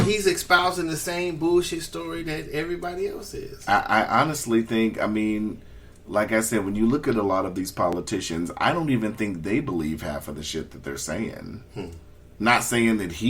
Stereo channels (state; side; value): identical; both; correlation 1.00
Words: espousing the same bullshit story that everybody else is. I honestly think, like I said, when you look at a lot of these politicians, I don't even think they believe half of the shit that they're saying. Not saying that